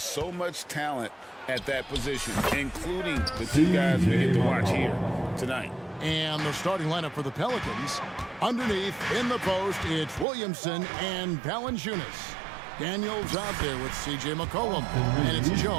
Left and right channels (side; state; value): left; drops out; at 10.2 s